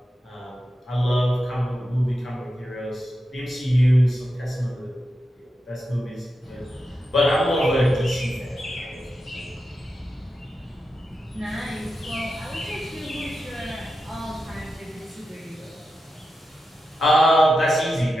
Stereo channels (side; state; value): both; normal; correlation 0.89